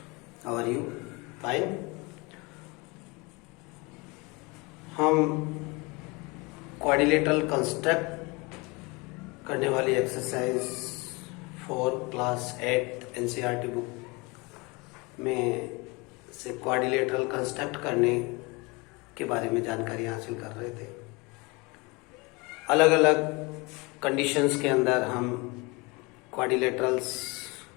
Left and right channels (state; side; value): quieter; right; 26.7 dB